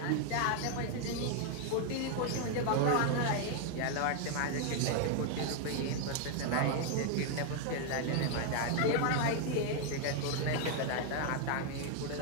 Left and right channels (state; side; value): different; both; correlation 0.00